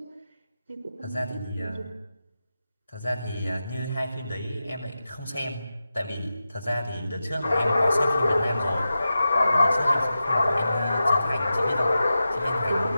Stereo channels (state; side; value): inverted; both; correlation -0.91